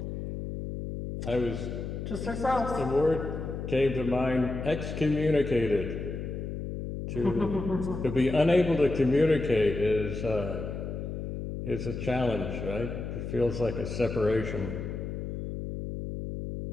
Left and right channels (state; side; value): noise; left; hum, 5 dB below the sound